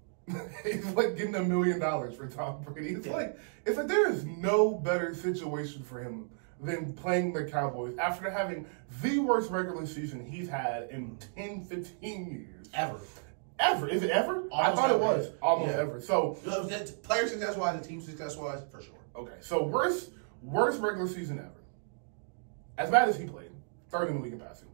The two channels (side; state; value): left; silent; digital silence